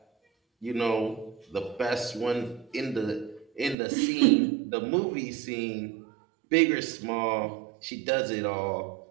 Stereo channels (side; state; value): left; drops out; at 3.8 s